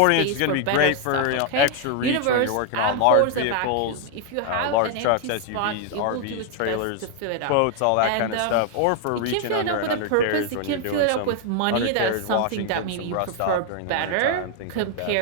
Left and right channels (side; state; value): both; different; correlation 0.00